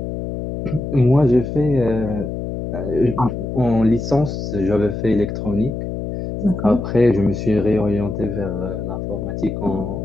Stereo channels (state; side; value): noise; left; hum, 5 dB below the sound